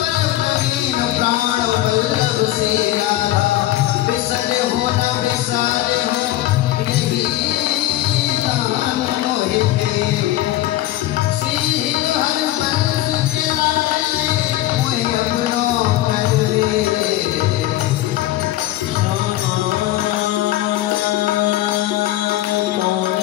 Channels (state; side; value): quieter; right; 15.1 dB